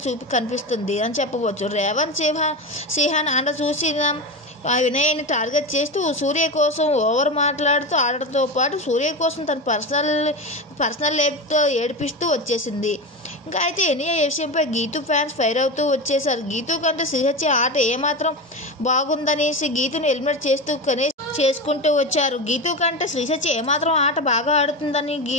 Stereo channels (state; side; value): normal; both; correlation 0.21